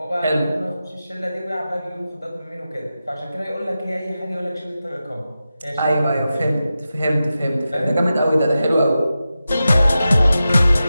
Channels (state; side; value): inverted; both; correlation -0.92